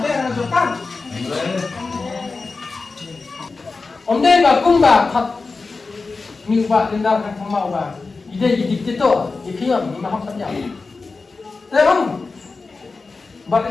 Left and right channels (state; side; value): quieter; right; 4.0 dB